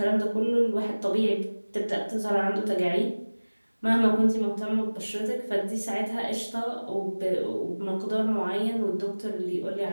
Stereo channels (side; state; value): both; inverted; correlation -1.00